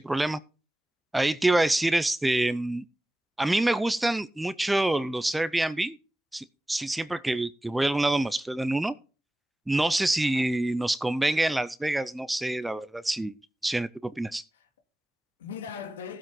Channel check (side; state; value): both; normal; correlation 0.97